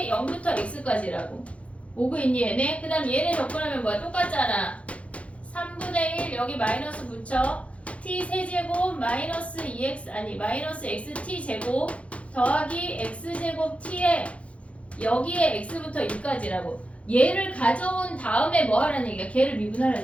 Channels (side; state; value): right; late; 0.063 ms